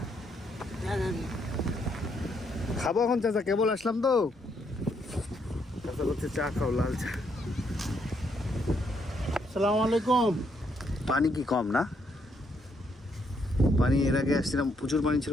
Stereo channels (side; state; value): both; normal; correlation 0.74